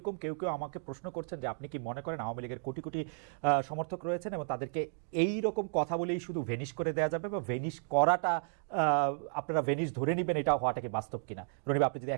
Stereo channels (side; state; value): left; silent; digital silence